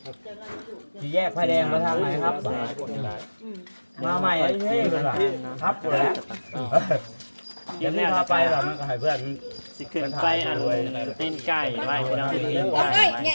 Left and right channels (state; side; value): inverted; both; correlation -1.00